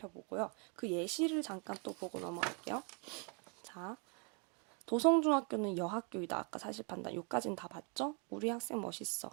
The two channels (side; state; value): left; quieter; 36.0 dB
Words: 그 예시를 잠깐 또 보고 넘어갈게요. 자, 도성중학교는 여학교이다. 아까 사실 판단. 요까진 다 봤죠? 우리 학생 멋있어.